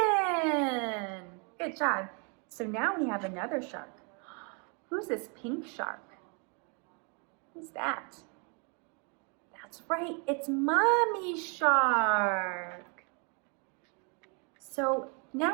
in. Good job. So now we have another shark. Who's this pink shark? Who's that? That's right, it's Mommy Shark. So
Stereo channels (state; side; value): quieter; left; 35.6 dB